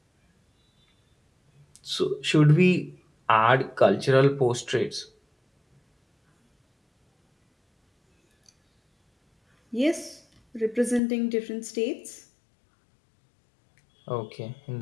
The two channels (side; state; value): right; drops out; at 11.0 s